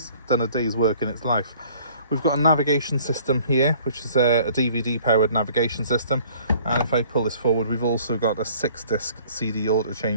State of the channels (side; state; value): both; inverted; correlation -0.54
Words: done a day's work in its life. We've got a navigation system here, which is a DVD powered navigation system, and if I pull this forward, we've also got a 6-disc CD auto